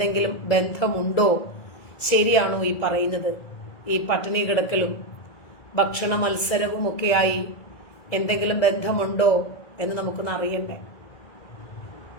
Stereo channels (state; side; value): late; right; 2.4 ms